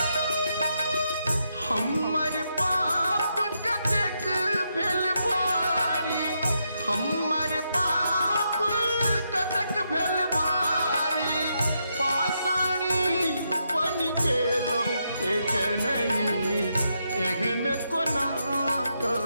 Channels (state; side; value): inverted; both; correlation -0.81